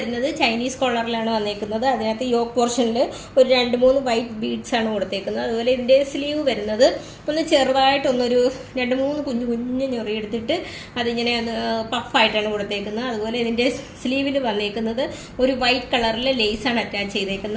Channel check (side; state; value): both; identical; correlation 1.00